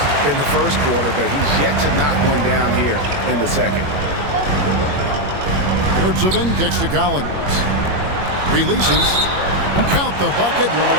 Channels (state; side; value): late; left; 21 ms